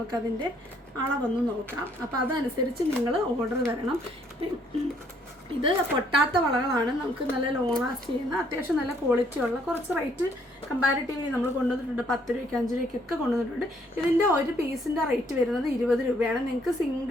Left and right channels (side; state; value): both; normal; correlation 0.66